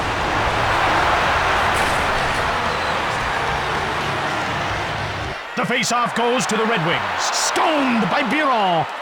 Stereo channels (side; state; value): both; identical; correlation 1.00